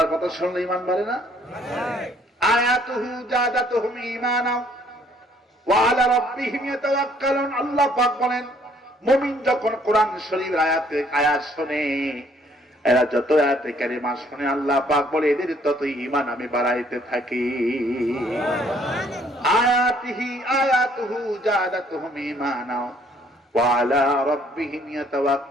কথা শুনলে ঈমান বাড়ে না? আয়াতুহু জাদাতুহুম ঈমানা ওয়া আলা রাব্বিহিম ইয়াতাওয়াক্কালুন। আল্লাহ পাক বলেন, মুমিন যখন কোরআন শরীফের আয়াত শুনে, এরা যত আয়াতে কারিমা শুনে, আল্লাহ পাক বলে এদের তত ঈমান আমি বাড়াইতে থাকি। আয়াতুহু জাদাতুহুম ঈমানা ওয়া আলা রাব্বিহিম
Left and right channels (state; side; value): normal; both; correlation 0.63